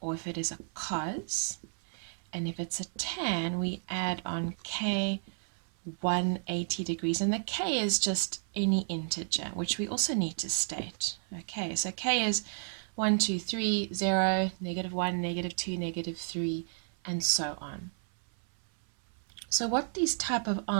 or if it is a cos, and if it's a tan we add on k 180 degrees, and the k is just any integer, which we also need to state. Okay, so k is 1, 2, 3, 0, -1, -2, -3, and so on. So what these type of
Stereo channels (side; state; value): left; silent; 56 dB below the other